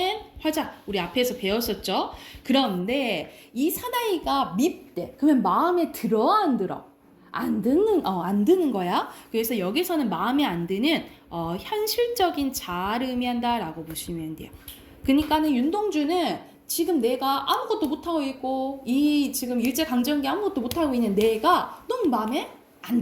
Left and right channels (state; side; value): identical; both; correlation 1.00